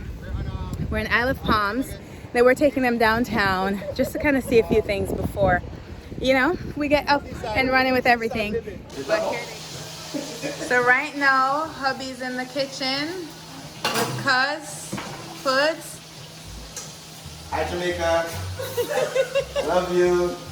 We're in Isle of Palms. Then we're taking them downtown just to kind of see a few things before, you know, we get up and running with everything. But here so right now, hubby's in the kitchen with Cuz Foods. Hi Jamaica. I love you.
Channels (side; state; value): both; identical; correlation 1.00